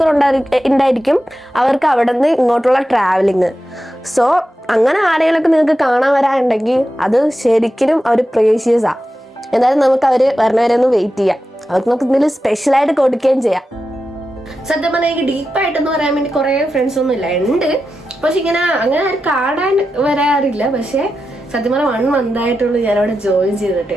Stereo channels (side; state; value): both; normal; correlation 0.90